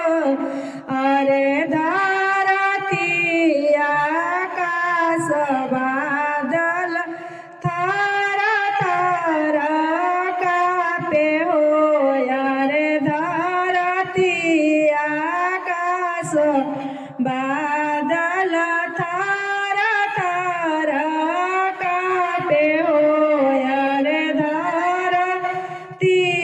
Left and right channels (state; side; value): identical; both; correlation 1.00